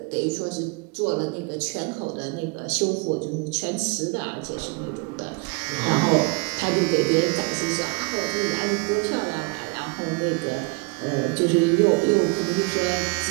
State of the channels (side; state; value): left; quieter; 29.6 dB